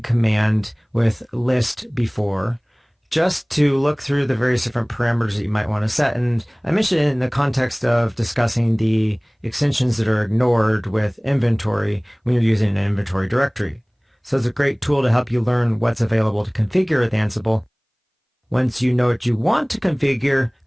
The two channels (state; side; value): identical; both; correlation 1.00